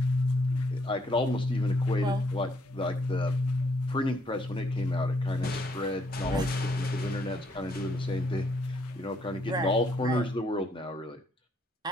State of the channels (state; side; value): normal; both; correlation 0.71